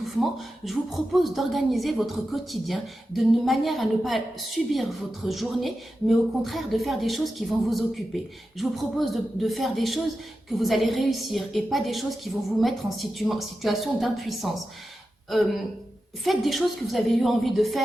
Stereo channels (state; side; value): normal; both; correlation 0.91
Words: je vous propose d'organiser votre quotidien de manière à ne pas subir votre journée, mais au contraire de faire des choses qui vont vous occuper. Je vous propose de faire des choses que vous allez réussir et pas des choses qui vont vous mettre en situation d'impuissance. Faites des choses que vous avez eu envie de